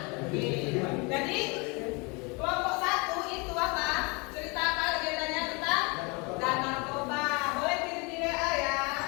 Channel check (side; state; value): right; quieter; 29.0 dB